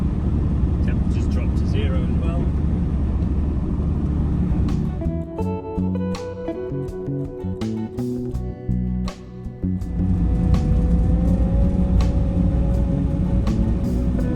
Temperatures dropped to 0 as well.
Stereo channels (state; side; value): identical; both; correlation 1.00